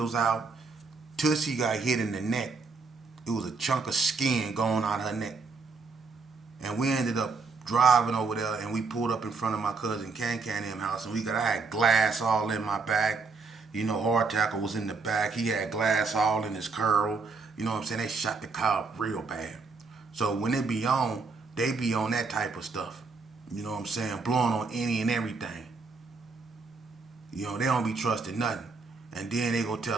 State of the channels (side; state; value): left; quieter; 4.4 dB